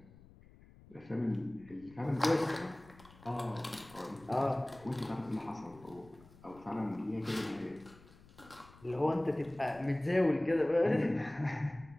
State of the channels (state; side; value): noise; left; rumble, 23 dB below the sound